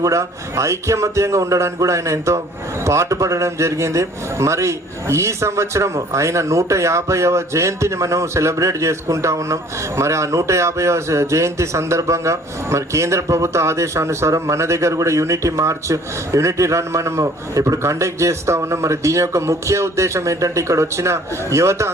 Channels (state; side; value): normal; both; correlation 0.54